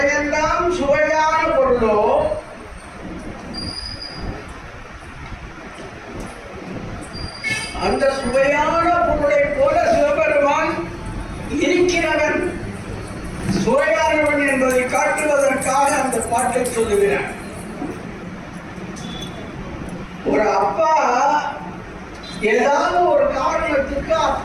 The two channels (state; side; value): identical; both; correlation 1.00